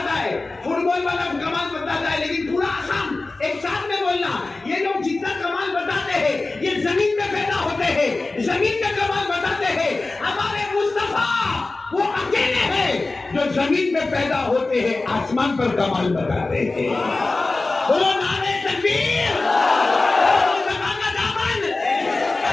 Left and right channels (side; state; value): right; quieter; 3.4 dB